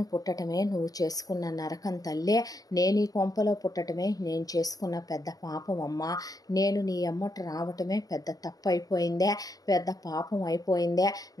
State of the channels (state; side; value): late; right; 0.18 ms